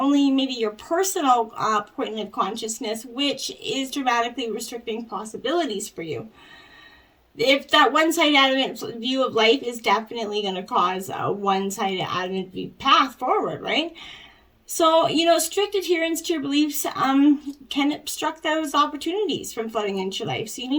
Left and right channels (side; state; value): both; identical; correlation 1.00